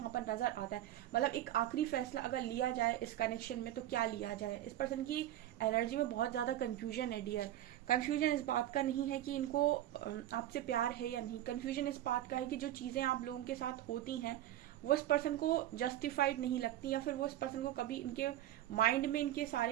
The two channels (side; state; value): left; quieter; 13.2 dB